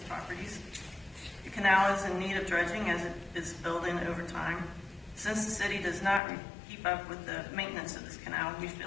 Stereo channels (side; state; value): right; drops out; at 6.2 s